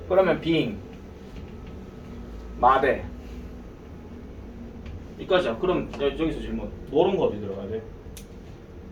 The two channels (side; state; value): both; identical; correlation 1.00